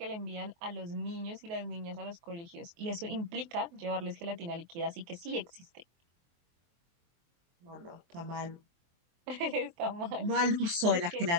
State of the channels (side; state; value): left; late; 23 ms